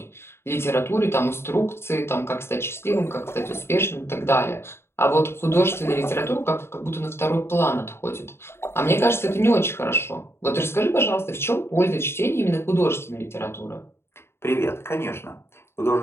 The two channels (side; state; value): right; late; 0.12 ms